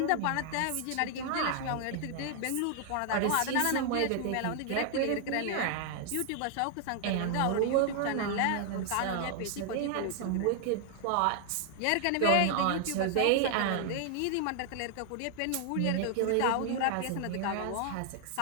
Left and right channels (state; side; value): different; both; correlation 0.00